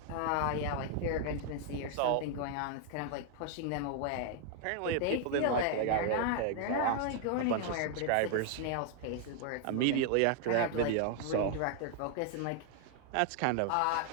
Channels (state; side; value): different; both; correlation 0.00